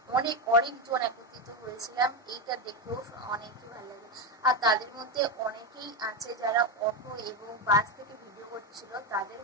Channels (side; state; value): both; normal; correlation 0.11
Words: অনেকজন একত্রিত হয়েছিলাম, এইটা দেখেও অনেকই ভালো লাগে। আর তাদের মধ্যে অনেকেই আছে যারা অটো এবং বাস থেকে ভিডিও করছিল। তাদের